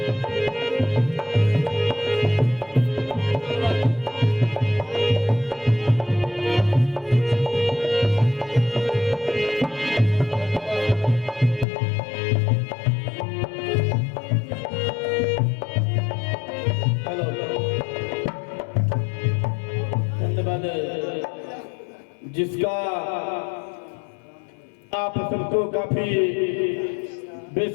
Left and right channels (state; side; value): drops out; right; at 11.7 s